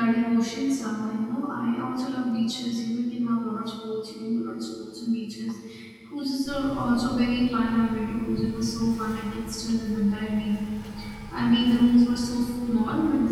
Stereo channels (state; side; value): identical; both; correlation 1.00